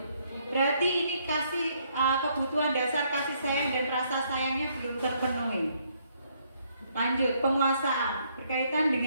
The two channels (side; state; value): both; inverted; correlation -0.70